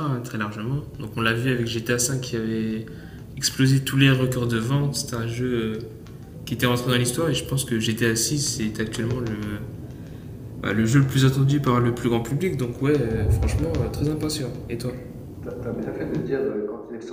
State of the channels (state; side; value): identical; both; correlation 1.00